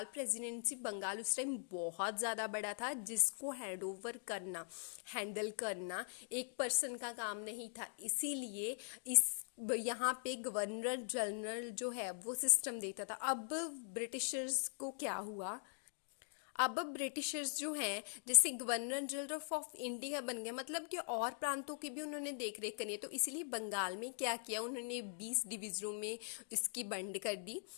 प्रेसिडेंसी, बंगाल उस टाइम बहुत ज़्यादा बड़ा था, जिसको हैंडल करना एक पर्सन का काम नहीं था। इसीलिए यहाँ पे गवर्नर जनरल जो है वो सिस्टम देता था। अब ब्रिटिशर्स को क्या हुआ, अब ब्रिटिशर्स जो हैं जैसे गवर्नर जनरल ऑफ इंडिया बन गए, मतलब कि और प्रांतों की भी उन्होंने देख रेख करनी है। तो इसीलिए बंगाल में क्या किया उन्होंने, 20 डिवीज़नों में इसकी बंड कर दी,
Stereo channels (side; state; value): right; silent; digital silence